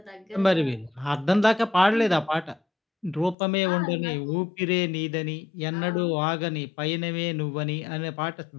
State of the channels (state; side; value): drops out; right; at 3.4 s